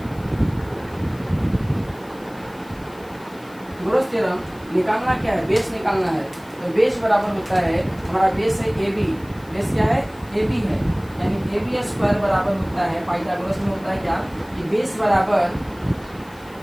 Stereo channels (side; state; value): left; noise; hiss, 26 dB below the sound